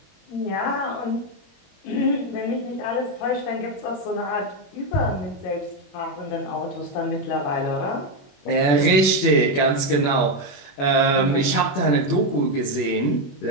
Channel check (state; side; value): late; right; 21 ms